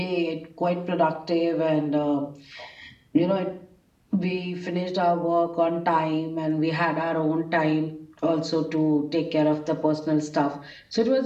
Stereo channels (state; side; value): identical; both; correlation 1.00